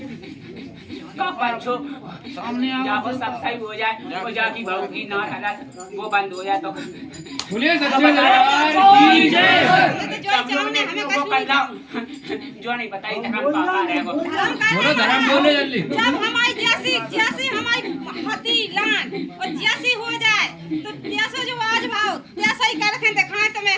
पंचो सामने जाओ सब सही हो जाए और जाकी बहू की ना हालत वो बंद हो जाए तो बोले सच्चे दरबार की जय। जो नहीं बताई धर्म पापा रहेगो। बोलो धर्म बोले जल्दी। जब हमारी जैसी हमारी हती लान और जैसी हो जाए तो जैसा जो आज भाव जैसा ही कर रखे दिखाए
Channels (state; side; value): identical; both; correlation 1.00